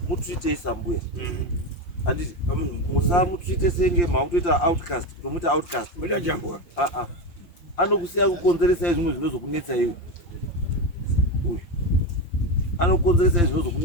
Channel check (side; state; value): right; late; 5.7 ms